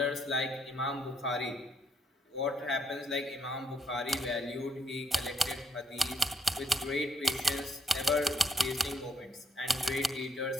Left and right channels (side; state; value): both; normal; correlation 0.73